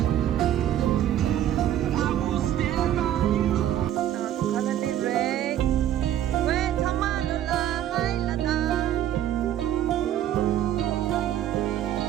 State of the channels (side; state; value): left; quieter; 11.5 dB